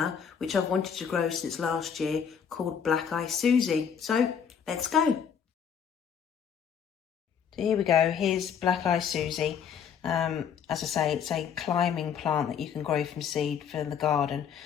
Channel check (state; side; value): quieter; right; 7.5 dB